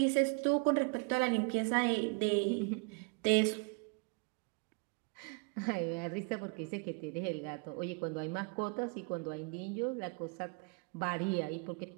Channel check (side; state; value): left; quieter; 34.2 dB